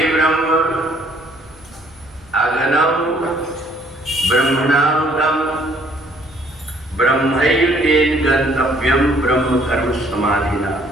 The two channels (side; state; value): left; noise; hum, 26 dB below the sound